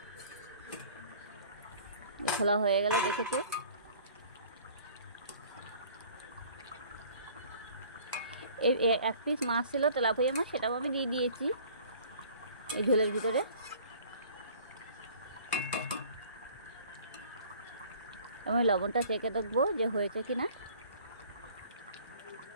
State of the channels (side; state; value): both; inverted; correlation -0.51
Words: খোলা হয়ে গেল, দেখেছো। এই এক পিস মাছ ছিল, তেলাপিয়া মাছ, সেটাও আমি দিয়ে দিয়েছি এই ঝোলের ভিতরে। আমি লবণটা চেখে দেখবো যে হয়েছে কি না।